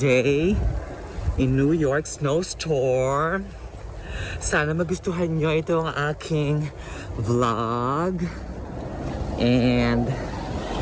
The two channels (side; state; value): both; identical; correlation 1.00